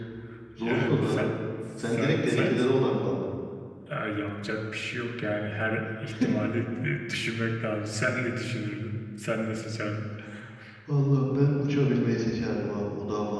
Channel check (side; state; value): both; identical; correlation 1.00